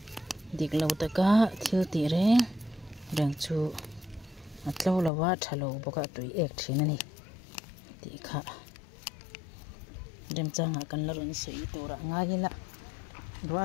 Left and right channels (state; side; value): drops out; right; at 5.1 s